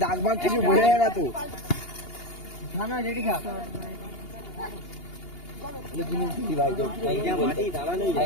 দাগ ভাগ কিছু বোঝা যায় না তো খানা রেডি খা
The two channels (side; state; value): right; late; 2.8 ms